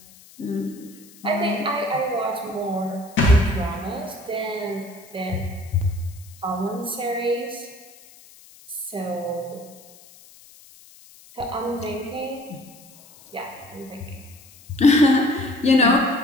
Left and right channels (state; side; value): noise; left; hiss, 23 dB below the sound